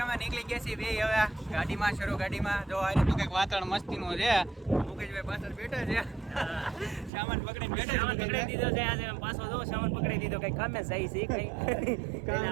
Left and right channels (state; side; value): drops out; left; at 7.1 s